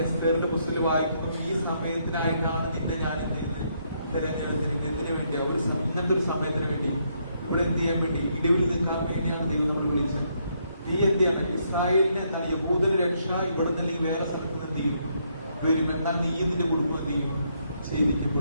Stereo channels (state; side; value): inverted; both; correlation -0.74